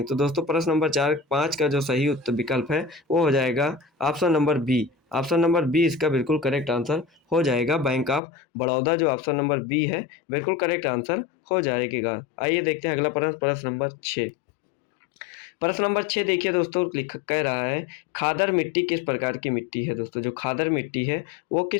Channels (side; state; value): right; drops out; at 8.2 s